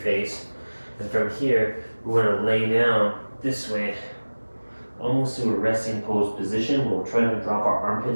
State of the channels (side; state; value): both; inverted; correlation -1.00